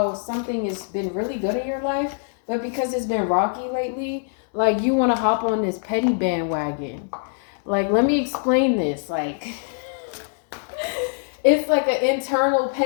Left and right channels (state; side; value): silent; right; 63 dB below the other